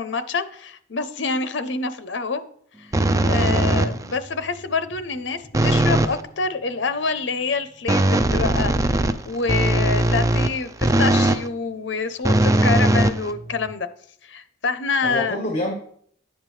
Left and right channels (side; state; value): both; normal; correlation 0.53